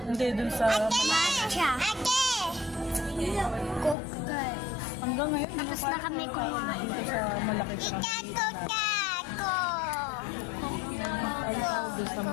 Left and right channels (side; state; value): right; drops out; at 4.0 s